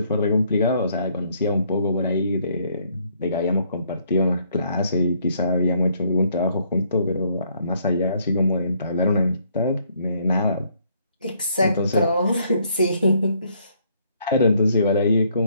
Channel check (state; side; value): inverted; both; correlation -0.68